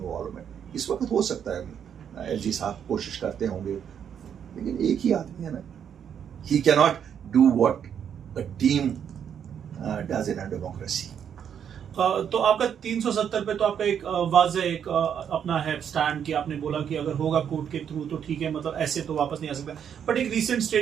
इस वक्त हो सकता है एलजी साहब कोशिश करते होंगे, लेकिन एक ही आदमी है ना, ही cannot do what a team does in a democracy. तो आपका 370 पे तो आपका एक वाज़ेह एक अपना है स्टैंड कि आपने बोला कि अगर होगा कोर्ट के थ्रू तो ठीक है, मतलब ऐसे तो वापस नहीं आ सकता। बट एक रीसेंट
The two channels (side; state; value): left; quieter; 8.4 dB